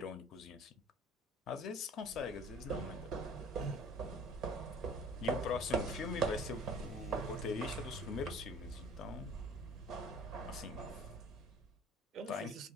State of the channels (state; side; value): normal; both; correlation 0.48